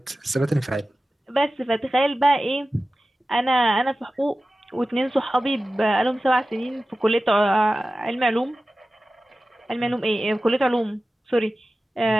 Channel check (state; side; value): normal; both; correlation 0.95